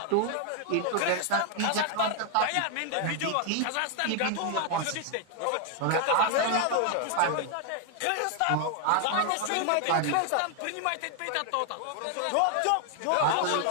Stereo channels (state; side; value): different; both; correlation 0.00